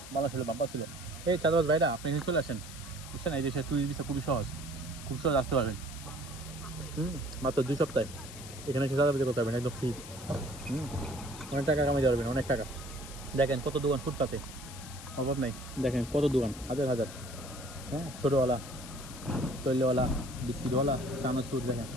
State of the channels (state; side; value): noise; left; hiss, 14 dB below the sound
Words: ভালো ছিল, বাম্পা ছিল। এই চাঁদাবাজ ভাইরা, আপনি এখানে চলে আসেন, বুঝছেন? এই দেশে টুরিস্ট ভিসা খুবই সহজ, খুব সহজ আসতে পারবেন। মাত্র 2 সপ্তাহে এখানে এসে চাঁদাবাজি করতে পারবেন একদম ফ্রি। অনেক টাকা কামাইতে পারবেন, অনেক টাকা। দেখেন কত দোকান ফুটপাতে, অভাব নাই। দেখেন কত দোকান, হাজার হাজার। হ্যাঁ, ছোটোওয়ালা, তৈলওয়ালা, বিস্কিটওয়ালা, চানাচুর। দেখেন